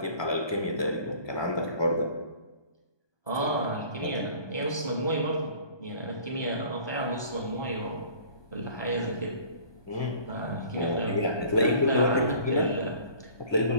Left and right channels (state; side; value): late; right; 1.2 ms